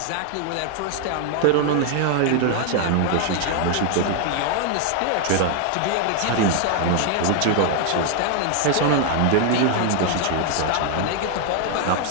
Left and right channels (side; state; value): both; different; correlation 0.00